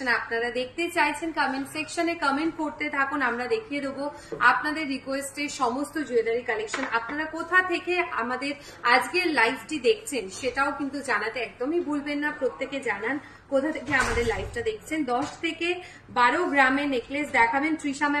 আপনারা দেখতে চাইছেন কমেন্ট সেকশনে কমেন্ট করতে থাকুন। আমরা দেখিয়ে দেবো আপনাদের রিকোয়েস্টে সমস্ত জুয়েলারি কালেকশন। আপনারা কোথা থেকে আমাদের আজকের লাইভটি দেখছেন সেটাও কিন্তু জানাতে একদমই ভুলবেন না। প্রত্যেকে জানান কোথা থেকে আমাদের লাইভটা দেখছেন। 10 থেকে 12 গ্রামের নেকলেস দেখাবেন তৃষা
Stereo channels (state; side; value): identical; both; correlation 1.00